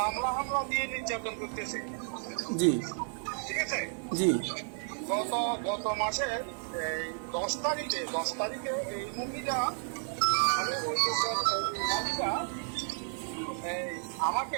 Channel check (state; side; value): silent; left; 56 dB below the other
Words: জি ঠিক আছে, জি গত মাসের 10 তারিখে এই মহিলা